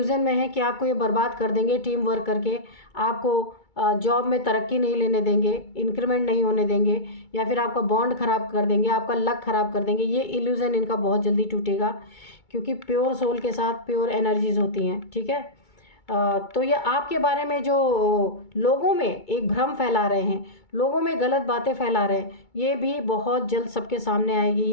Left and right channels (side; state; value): right; late; 2.2 ms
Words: में है कि आपको ये बर्बाद कर देंगे टीम वर्क करके, आपको जॉब में तरक्की नहीं लेने देंगे, इंक्रीमेंट नहीं होने देंगे, या फिर आपका बॉन्ड ख़राब कर देंगे, आपका लक ख़राब कर देंगे, ये इल्यूज़न इनका बहुत जल्दी टूटेगा, क्योंकि प्योर सोल के साथ प्योर एनर्जीज़ होती हैं, ठीक है। तो ये आपके बारे में जो लोगों में एक भ्रम फैला रहे हैं, लोगों में गलत बातें फैला रहे हैं, ये भी बहुत जल्द सबके सामने आएगी,